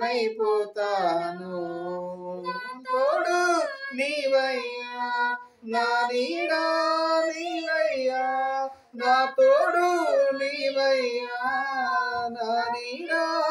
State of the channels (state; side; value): identical; both; correlation 1.00